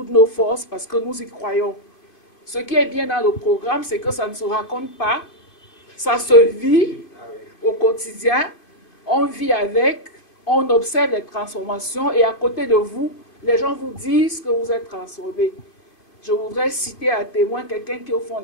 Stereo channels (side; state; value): right; late; 2.5 ms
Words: nos forces parce que nous y croyons. Ce qui est bien dans le programme, c'est que ça ne se raconte pas, ça se vit au quotidien, on vit avec, on observe les transformations et à côté de vous, les gens vous disent que vous êtes transformés. Je voudrais citer à témoin quelqu'un qui est au fond